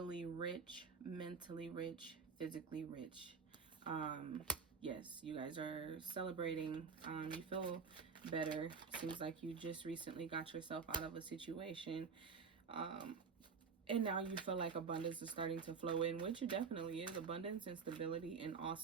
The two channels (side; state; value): left; quieter; 5.5 dB